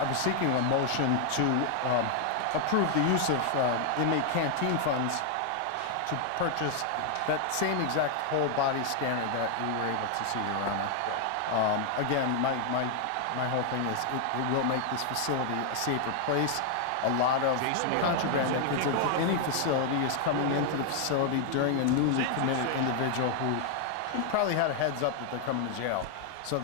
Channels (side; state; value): both; different; correlation 0.00